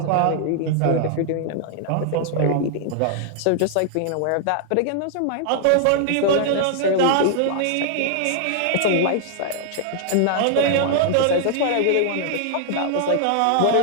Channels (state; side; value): different; both; correlation 0.00